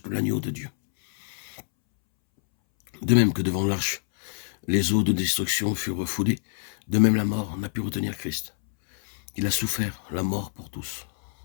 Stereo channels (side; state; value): right; silent; 61 dB below the other